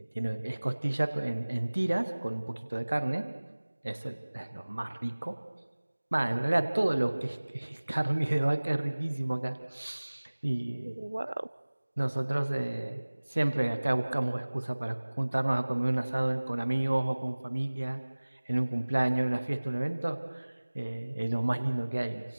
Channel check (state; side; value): inverted; both; correlation -1.00